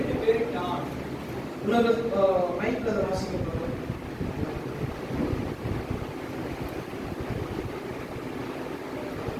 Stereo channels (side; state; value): both; identical; correlation 1.00